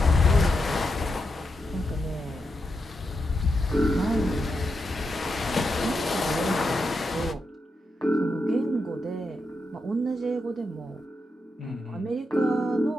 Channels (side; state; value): both; normal; correlation 0.85